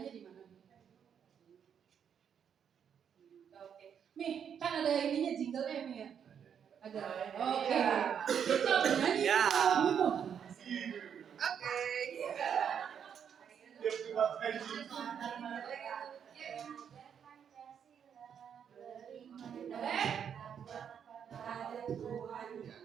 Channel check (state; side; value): quieter; left; 8.0 dB